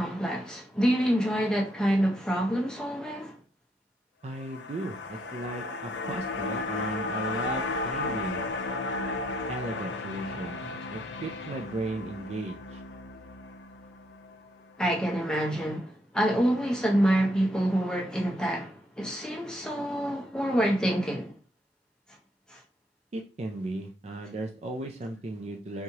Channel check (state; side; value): normal; both; correlation 0.73